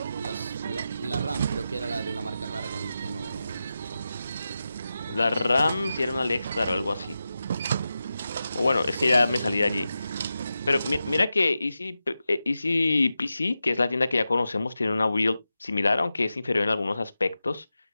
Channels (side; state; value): both; inverted; correlation -0.91